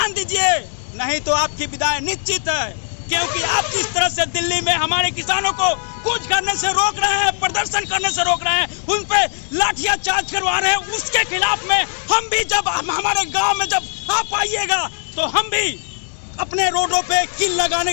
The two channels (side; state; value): right; silent; 66 dB below the other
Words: दीजिए, नहीं तो आपकी विदाई निश्चित है। क्योंकि आप जिस तरह से दिल्ली में हमारे किसानों को कूच करने से रोक रहे हैं, प्रदर्शन करने से रोक रहे हैं, उन पे लाठियां चार्ज करवा रहे हैं, उसके खिलाफ में हम भी जब हमारे गांव में जब आप आइएगा तो हम भी अपने रोडों पे किल लगाने